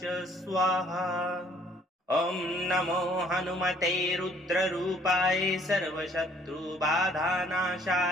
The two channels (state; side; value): normal; both; correlation 0.60